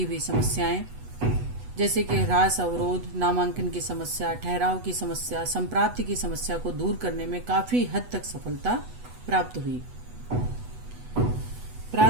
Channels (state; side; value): late; left; 8.1 ms